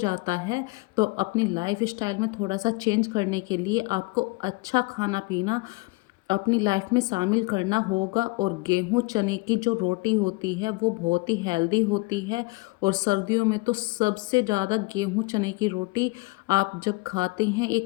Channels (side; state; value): right; quieter; 25.1 dB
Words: है। तो अपनी लाइफ स्टाइल में थोड़ा सा चेंज करने के लिए आपको अच्छा खाना पीना अपनी लाइफ में शामिल करना होगा। और गेहूँ चने की जो रोटी होती है वो बहुत ही हेल्दी होती है। और सर्दियों में तो सबसे ज़्यादा गेहूँ चने की रोटी आप जब खाते हैं,